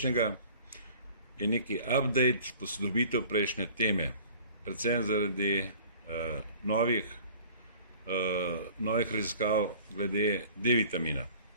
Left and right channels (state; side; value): inverted; both; correlation -0.48